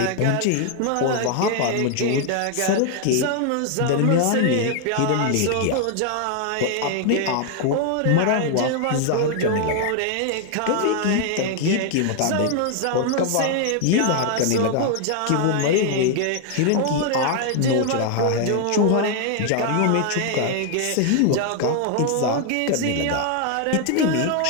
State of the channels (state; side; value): different; both; correlation 0.00